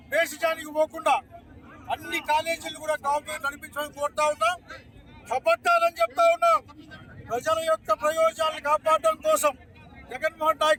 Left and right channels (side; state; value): both; identical; correlation 1.00